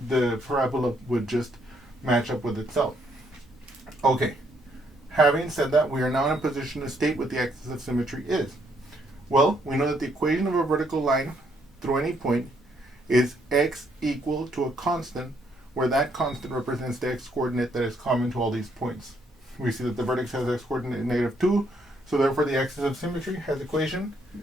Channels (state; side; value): normal; both; correlation 0.71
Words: the parabola would just match up with itself. Okay, having said that, we are now in a position to state what the axis of symmetry is. Well, we know that the equation of a vertical line through any point is x equal to a constant, where that constant represents the x coordinate that is common to all these points. We see that the vertex has x coordinate negative 2, so therefore the axis of symmetry has equation